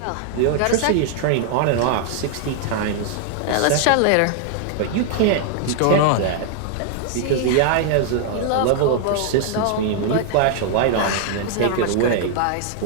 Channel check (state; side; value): different; both; correlation 0.00